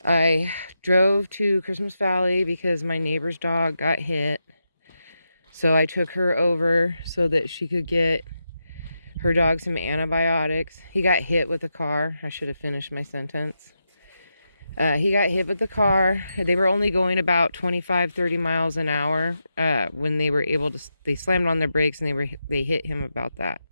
I drove to Christmas Valley because my neighbor's dog got hit. So I took her over so that she could get her dog some antibiotics. He got hit with a car. I should have finished my sentence. He got hit with the car. They were only going about 25, 30 miles an hour when they were able to, they slammed on their brakes and they hit him about that.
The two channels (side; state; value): both; inverted; correlation -0.86